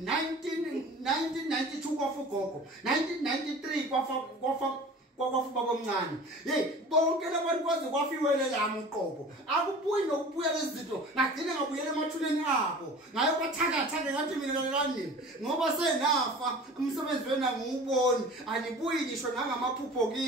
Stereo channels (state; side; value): normal; both; correlation 0.41